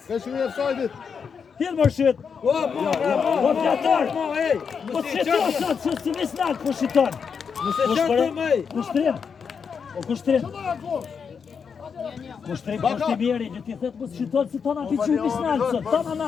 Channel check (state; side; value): quieter; right; 6.3 dB